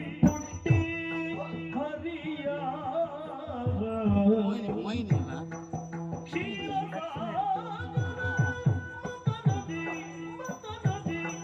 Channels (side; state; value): both; identical; correlation 1.00